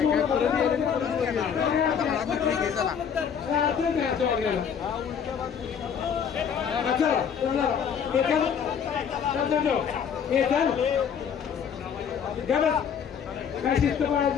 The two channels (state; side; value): quieter; right; 7.5 dB